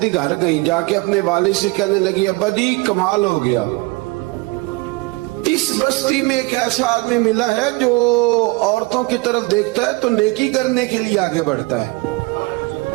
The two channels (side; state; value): left; quieter; 24.4 dB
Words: گھر گئیں، جا کے اپنے والد سے کہنے لگی ابا جی کمال ہو گیا، اس بستی میں ایک ایسا آدمی ملا ہے جو عورتوں کی طرف دیکھتا ہے تو نیکی کرنے کے لیے آگے بڑھتا ہے،